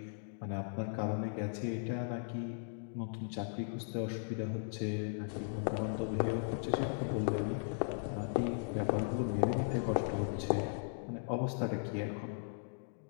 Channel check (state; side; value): silent; right; digital silence